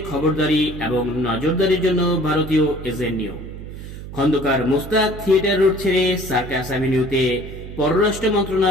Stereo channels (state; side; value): noise; right; hum, 11 dB below the sound